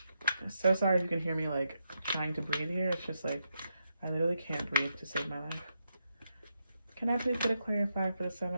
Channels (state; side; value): inverted; both; correlation -0.83